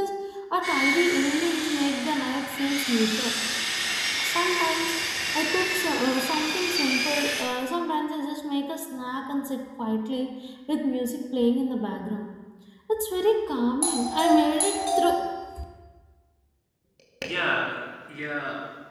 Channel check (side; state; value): both; identical; correlation 1.00